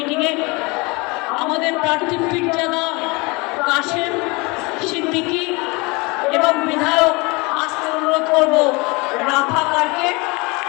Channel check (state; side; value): quieter; right; 26.4 dB